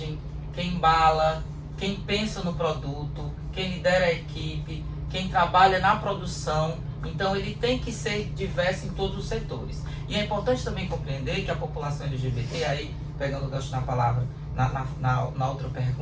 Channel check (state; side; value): identical; both; correlation 1.00